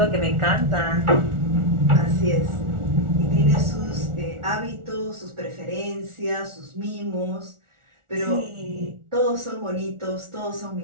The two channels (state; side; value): late; left; 1.4 ms